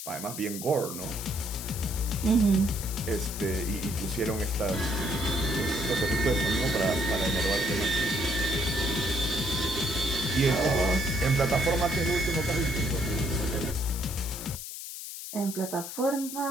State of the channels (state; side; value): noise; left; hiss, 9 dB below the sound